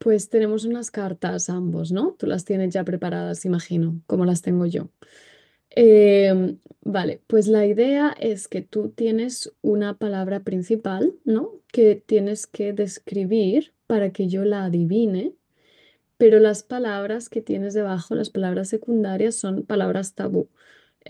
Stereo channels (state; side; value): identical; both; correlation 1.00